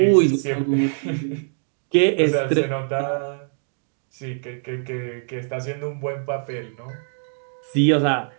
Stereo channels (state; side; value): silent; left; digital silence